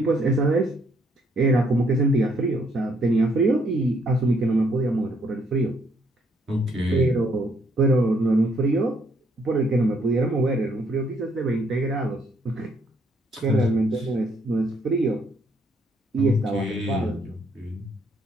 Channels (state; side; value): normal; both; correlation 0.69